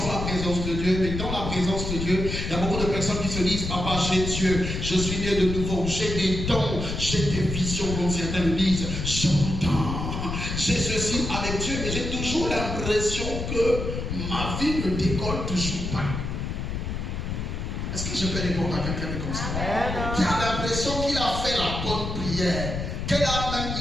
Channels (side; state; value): left; noise; rumble, 4 dB below the sound